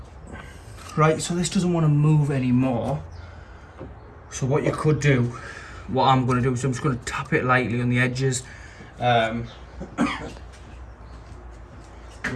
Right, so this doesn't want to move anymore. So what you could do, what I'm going to do is I'm just going to tap it lightly on the edges with a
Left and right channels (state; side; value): identical; both; correlation 1.00